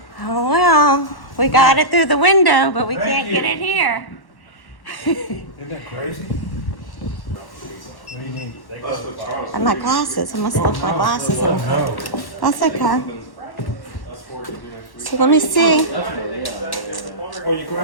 Oh well, we got it through the window, but we Thank can't you. get it here. Isn't that crazy? What do you need? And my glasses, I must have left my glasses in. No. That's okay. So let me see. Oh, your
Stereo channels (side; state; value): right; late; 1.1 ms